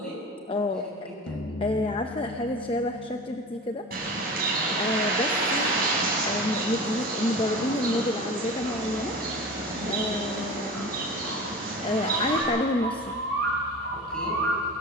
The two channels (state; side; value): normal; both; correlation 0.34